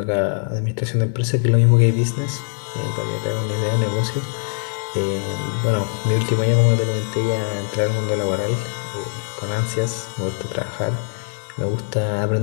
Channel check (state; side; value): silent; right; 65 dB below the other